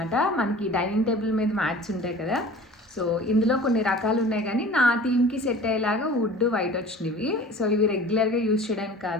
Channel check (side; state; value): both; normal; correlation 0.42